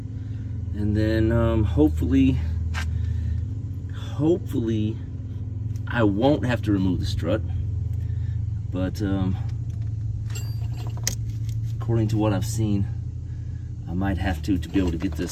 and then hopefully I won't have to remove the strut. But according to what I've seen, I might have to be able to get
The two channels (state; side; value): identical; both; correlation 1.00